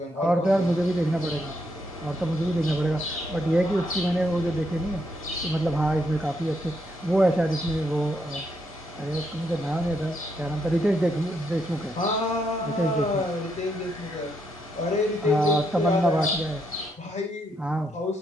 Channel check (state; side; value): normal; both; correlation 0.77